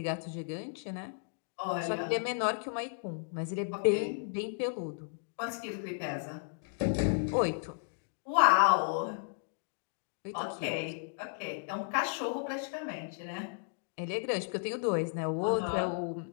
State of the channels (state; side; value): silent; right; digital silence